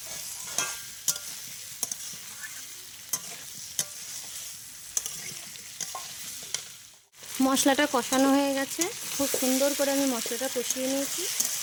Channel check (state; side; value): identical; both; correlation 1.00